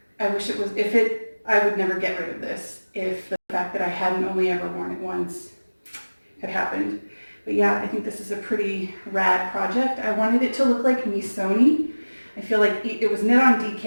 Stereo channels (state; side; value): inverted; both; correlation -1.00